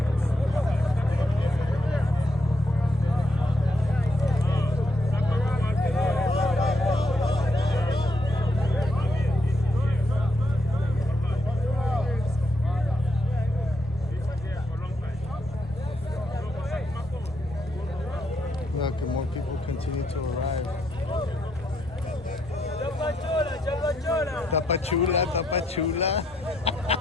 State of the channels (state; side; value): normal; both; correlation 0.78